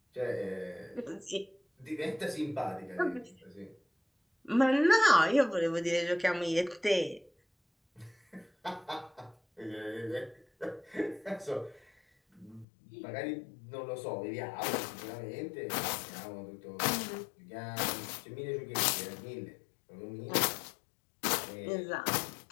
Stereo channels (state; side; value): drops out; right; at 12.7 s